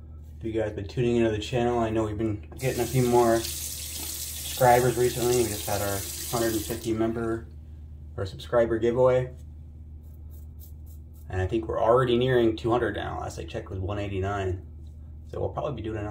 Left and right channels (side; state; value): both; identical; correlation 1.00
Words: If you guys have been tuning into the channel, I know we've been getting a few more subscribers recently. We just had our 150 member or subscriber giveaway, and I think we're already nearing 200 now. Last I checked was 189, so we'll probably be doing